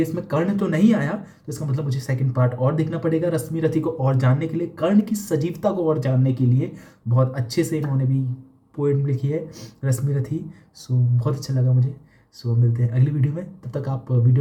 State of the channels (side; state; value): both; identical; correlation 1.00